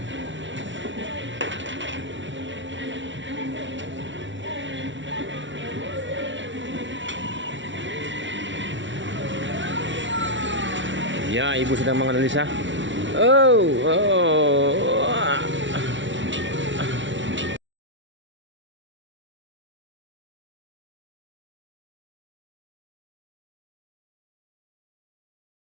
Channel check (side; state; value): left; late; 0.55 ms